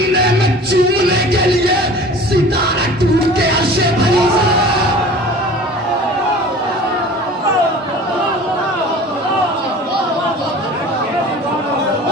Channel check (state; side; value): normal; both; correlation 0.42